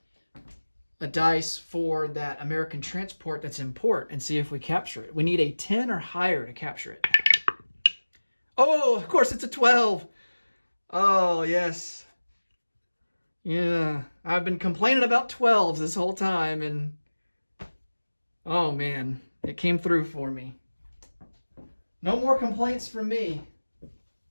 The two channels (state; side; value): inverted; both; correlation -1.00